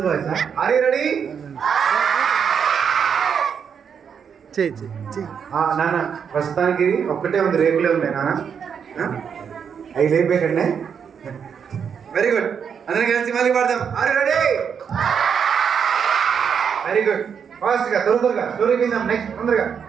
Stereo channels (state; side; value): quieter; left; 7.1 dB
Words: voice. Are you ready? నాన్న ప్రస్తుతానికి ఒక్కటే ఉంది, రేపులే ఉన్నాయి నాన్న. అవి లేపేకండి. Very good. అందరం కలిసి మళ్ళీ పాడదాం. Are you ready? Very good. Fast గా త్వరగా స్టోరీ విందాం. నెక్స్ట్ తొందరగా